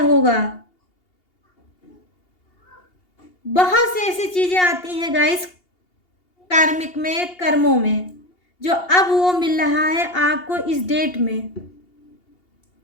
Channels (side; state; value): right; late; 2.8 ms